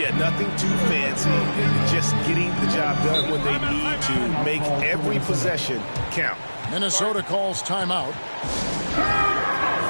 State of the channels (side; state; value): both; inverted; correlation -1.00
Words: nothing too fancy. Just getting the job done when they need to. Make every possession count. Minnesota calls timeout.